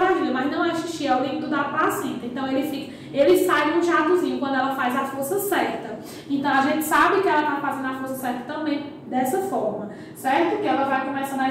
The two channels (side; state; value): both; identical; correlation 1.00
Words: mas não é xixi, é o líquido da placenta. Então ele sai num jatozinho quando ela faz a força certa. Então a gente sabe que ela está fazendo a força certa também dessa forma, certo? Que ela vai começando a